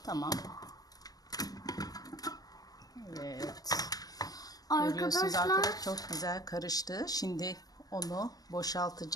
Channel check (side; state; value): right; late; 0.18 ms